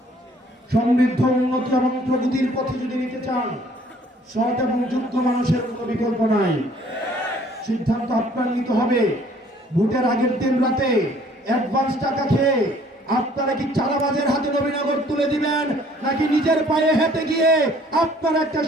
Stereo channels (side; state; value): both; normal; correlation 0.58